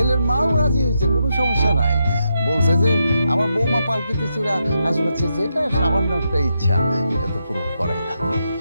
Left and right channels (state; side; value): inverted; both; correlation -0.83